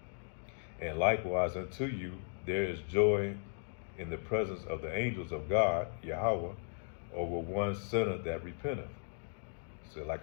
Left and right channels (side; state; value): right; silent; digital silence